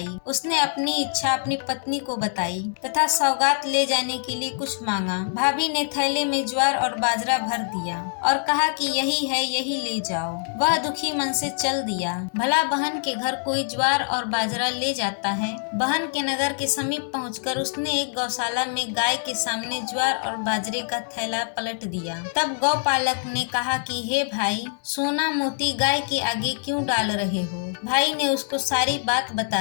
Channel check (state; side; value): silent; right; 57 dB below the other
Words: उसने अपनी इच्छा अपनी पत्नी को बताई तथा सौगात ले जाने के लिए कुछ मांगा। भाभी ने थैले में ज्वार और बाजरा भर दिया और कहा कि यही है, यही ले जाओ। वह दुखी मन से चल दिया। भला बहन के घर कोई ज्वार और बाजरा ले जाता है। बहन के नगर के समीप पहुंचकर उसने एक गौशाला में गाय के सामने ज्वार और बाजरे का थैला पलट दिया। तब गौपालक ने कहा कि हे भाई, सोना मोती गाय के आगे क्यों डाल रहे हो। भाई ने उसको सारी बात